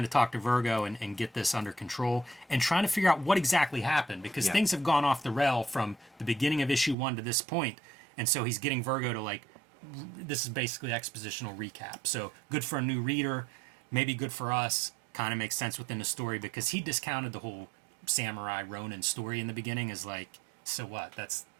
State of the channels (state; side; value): drops out; left; at 7.0 s